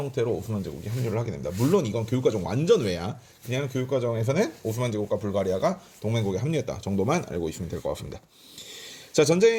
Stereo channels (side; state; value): both; identical; correlation 1.00